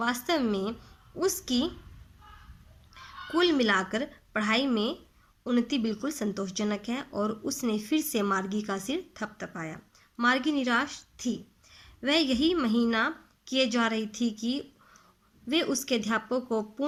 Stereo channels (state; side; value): identical; both; correlation 1.00